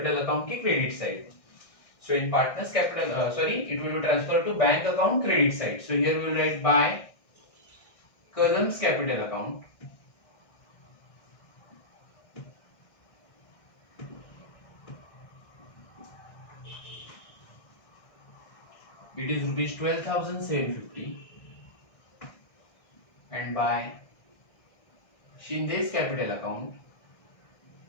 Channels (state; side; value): late; right; 1.6 ms